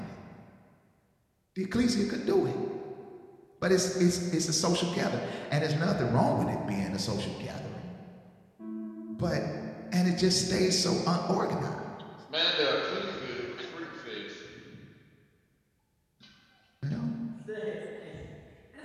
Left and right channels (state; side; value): identical; both; correlation 1.00